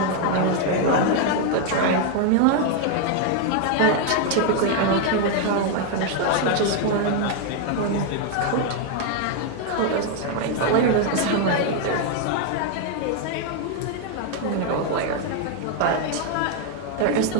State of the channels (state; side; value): different; both; correlation 0.00